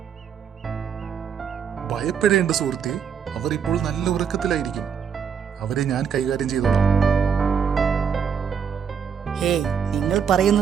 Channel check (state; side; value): quieter; left; 7.2 dB